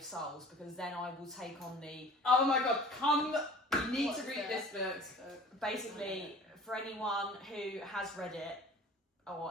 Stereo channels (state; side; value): normal; both; correlation 0.45